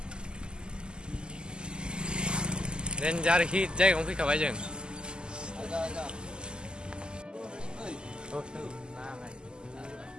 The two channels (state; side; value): late; left; 0.047 ms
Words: रेन्जार हिट जायगायावनो फैखाबाय जों